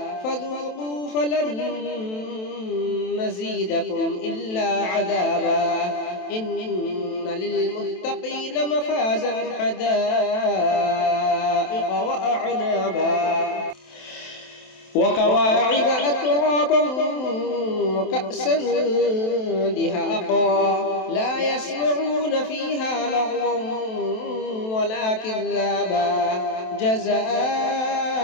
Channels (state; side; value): late; right; 27 ms